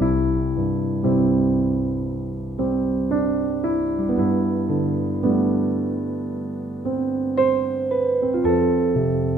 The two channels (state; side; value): normal; both; correlation 0.72